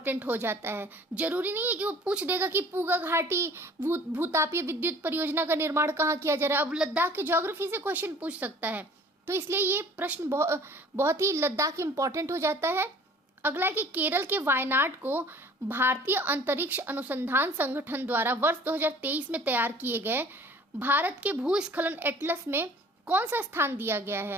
हो जाता है। जरूरी नहीं है कि वो पूछ देगा कि पूगा घाटी भूतापीय विद्युत परियोजना का निर्माण कहाँ किया जा रहा है। अब लद्दाख के ज्योग्राफी से क्वेश्चन पूछ सकता है, तो इसलिए ये प्रश्न बहुत ही लद्दाख इंपॉर्टेंट हो जाता है। अगला है कि केरल के वायनाड को भारतीय अंतरिक्ष अनुसंधान संगठन द्वारा वर्ष 2023 में तैयार किए गए भारत के भूस्खलन एटलस में कौन सा स्थान दिया गया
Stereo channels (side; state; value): both; normal; correlation 0.50